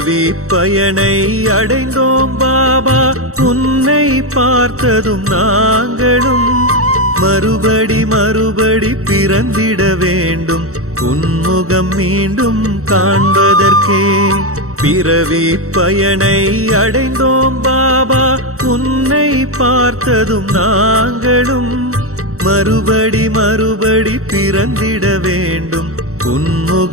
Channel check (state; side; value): late; left; 0.64 ms